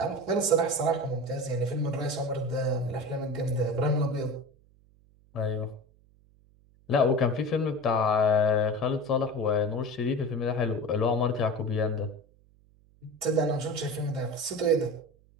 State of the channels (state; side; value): noise; right; hum, 30 dB below the sound